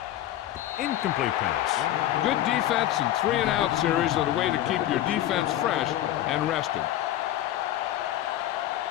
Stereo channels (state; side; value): quieter; right; 13.1 dB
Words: Incomplete pass. Good defense and 3-and-out series are the way to keep your defense fresh and rested.